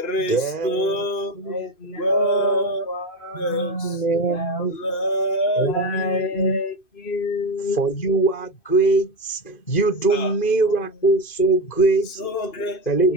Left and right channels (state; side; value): late; right; 2.5 ms